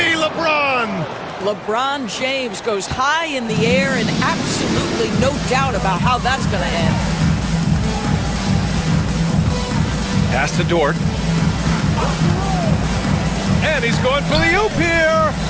LeBron? LeBron James goes high in the air and absolutely no doubt about how that's going to end. Pass to Dort. And he's going for the oop here.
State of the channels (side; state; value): both; identical; correlation 1.00